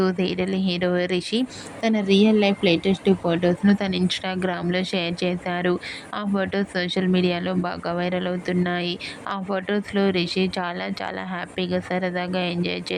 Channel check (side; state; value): both; identical; correlation 1.00